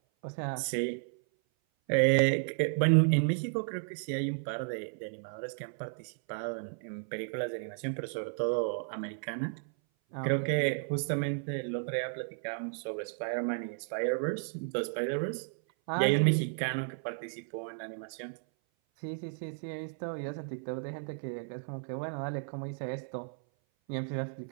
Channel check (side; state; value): left; silent; 56 dB below the other